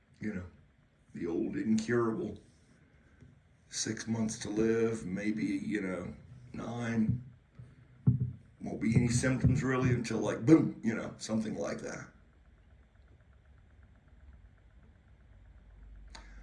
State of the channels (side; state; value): both; identical; correlation 1.00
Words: the old incurable, 6 months to live, maybe, 9, won't be any symptoms really until like, boom, something like that.